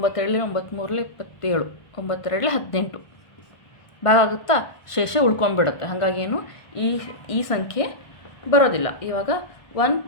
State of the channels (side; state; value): right; late; 1.5 ms